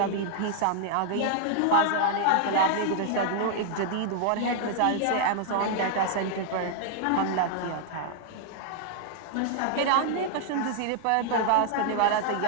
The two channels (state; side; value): different; both; correlation 0.00